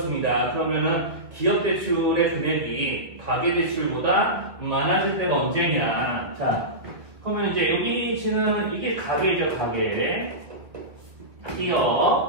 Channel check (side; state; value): left; late; 1.8 ms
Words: 그러면은 기업대출의 금액이 가계대출보다 많아질 때가 언제냐. 자, 그러면 이제 여기 지금 이게 가계죠, 가계.